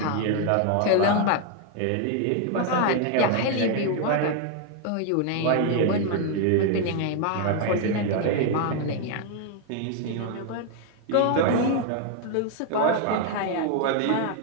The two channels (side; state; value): both; different; correlation 0.00